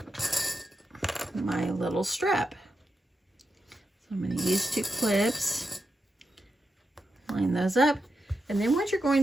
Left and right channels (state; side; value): normal; both; correlation 0.87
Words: little strap. So I'm going to use 2 clips, line those up. And then what you're